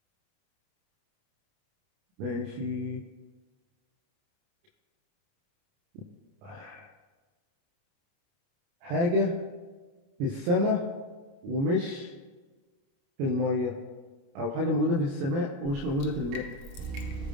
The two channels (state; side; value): late; left; 29 ms